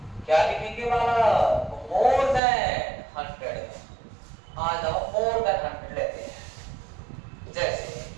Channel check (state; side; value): drops out; left; at 2.4 s